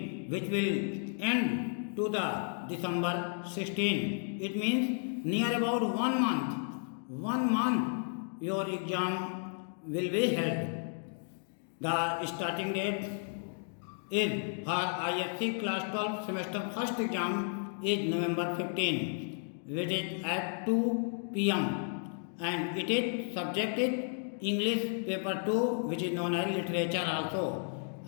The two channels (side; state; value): right; silent; 56 dB below the other